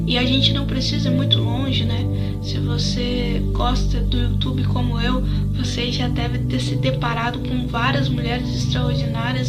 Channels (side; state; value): both; identical; correlation 1.00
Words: e a gente não precisa ir muito longe, Se você gosta do YouTube como eu, você já deve ter se deparado com várias mulheres